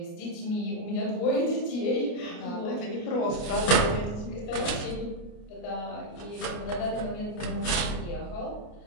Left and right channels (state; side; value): late; right; 29 ms